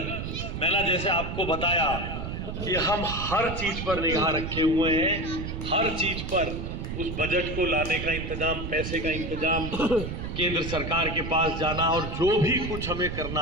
मैंने जैसे आपको बताया कि हम हर चीज पर निगाह रखे हुए हैं, हर चीज पर उस बजट को लाने का इंतजाम, पैसे का इंतजाम, केंद्र सरकार के पास जाना और जो भी कुछ हमें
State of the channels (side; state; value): right; noise; rumble, 5 dB below the sound